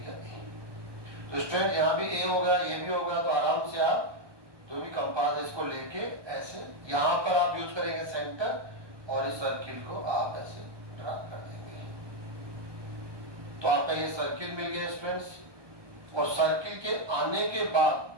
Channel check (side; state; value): left; late; 1.2 ms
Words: a। तो स्टूडेंट यहाँ भी a होगा, ये भी होगा, तो आराम से आप जो भी कंपास है इसको लेके ऐसे यहाँ पर आप यूज करेंगे सेंटर, और इस सर्किल को आप ऐसे ड्रा कर देंगे। तो आपका ये सर्किल मिल गया स्टूडेंट्स। और सर्किल के आने के बाद